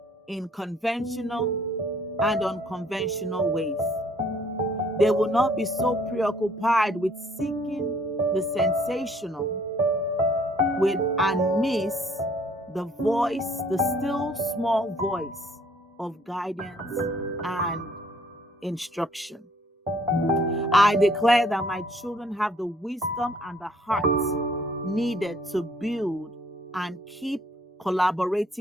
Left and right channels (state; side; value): normal; both; correlation 0.61